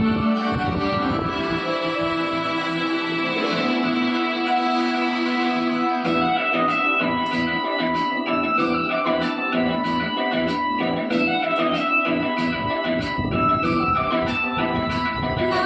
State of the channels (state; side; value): identical; both; correlation 1.00